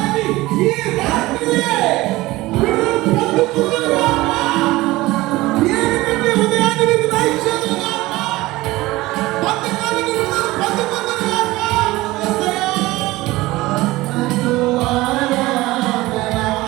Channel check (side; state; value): left; quieter; 19.1 dB